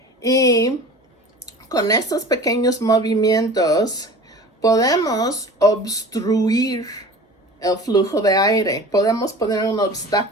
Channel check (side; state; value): both; normal; correlation 0.39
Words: Y con estos pequeños movimientos podemos obstruir el flujo de aire. Podemos poner un